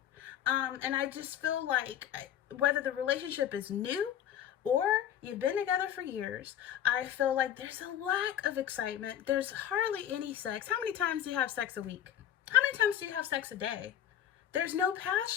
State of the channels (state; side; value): quieter; right; 10.6 dB